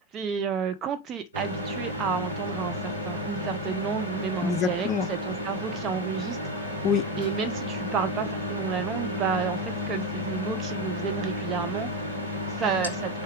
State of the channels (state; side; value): normal; both; correlation 0.15